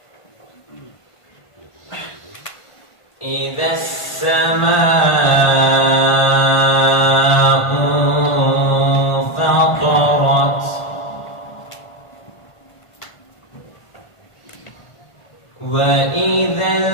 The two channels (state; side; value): late; right; 1.5 ms